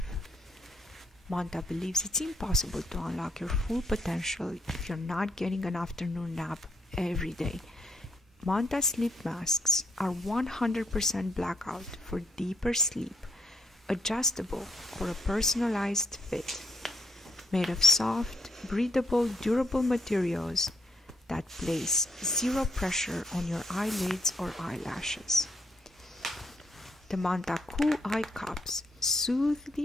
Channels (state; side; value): normal; both; correlation 0.74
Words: Manta believes it's impossible to unlock your full potential if you're not getting an afternoon nap every day. Manta sleep masks are 100% blackout for deeper sleep, adjustable for a personalized fit, made of soft, breathable, durable materials that place zero pressure on your eyelids or eyelashes. The Manta Cool Eye Cups soothe